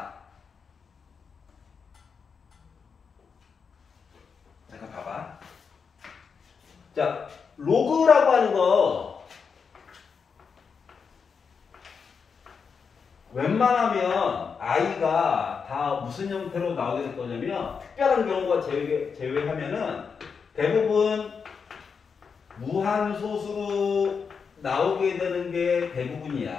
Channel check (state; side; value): quieter; right; 5.9 dB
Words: 잠깐 봐봐. 자, 로그라고 하는 거 웬만하면 i가 다 무슨 형태로 나오게 될 거냐면 특별한 경우가 제외하면은 대부분 무한소수로 나오게 되는 게